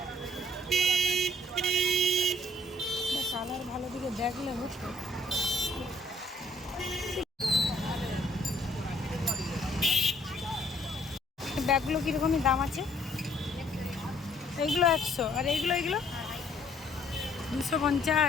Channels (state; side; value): normal; both; correlation 0.63